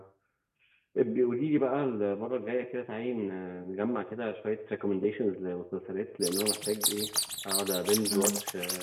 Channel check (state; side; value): identical; both; correlation 1.00